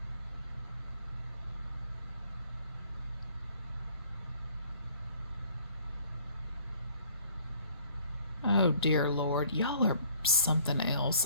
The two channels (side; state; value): both; inverted; correlation -0.57